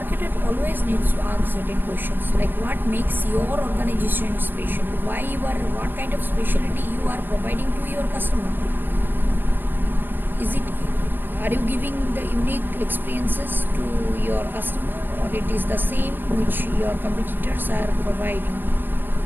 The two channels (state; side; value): late; left; 0.094 ms